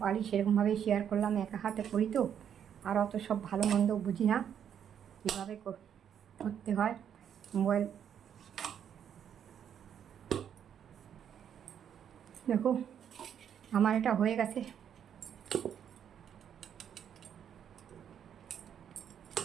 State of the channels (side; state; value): left; quieter; 8.8 dB